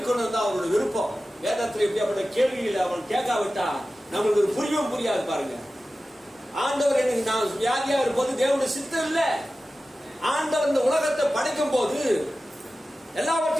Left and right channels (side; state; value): both; normal; correlation 0.95